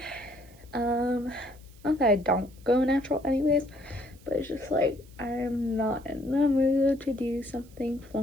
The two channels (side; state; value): right; noise; hiss, 27 dB below the sound